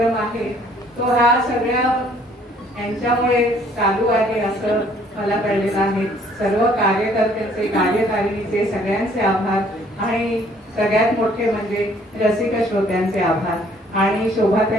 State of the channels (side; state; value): both; normal; correlation 0.60